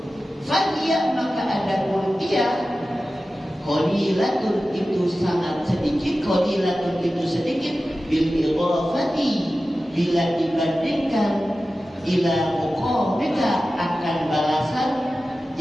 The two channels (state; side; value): normal; both; correlation 0.94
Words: fahiyah maka ada pun dia qalilatun itu sangat sedikit, qalilatun itu sedikit bil idhafati bila dibandingkan ila muqamika akan balasan